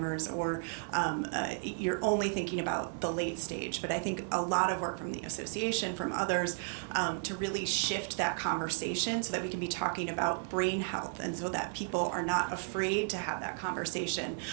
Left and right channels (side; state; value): left; silent; 55 dB below the other